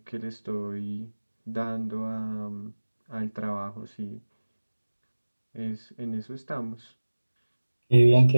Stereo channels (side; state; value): both; inverted; correlation -1.00